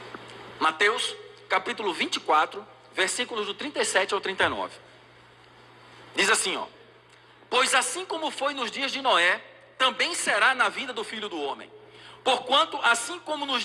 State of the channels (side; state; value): both; identical; correlation 1.00